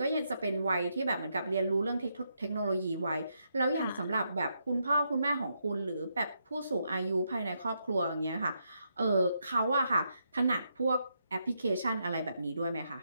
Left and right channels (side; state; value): both; inverted; correlation -0.80